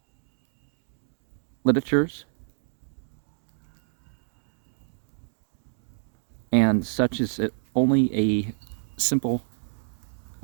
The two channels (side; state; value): left; silent; digital silence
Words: literatures, and such is only a simple,